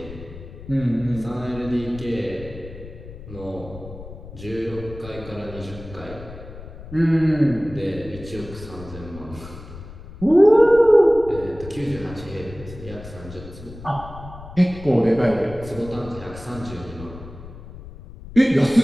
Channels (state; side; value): noise; left; rumble, 15 dB below the sound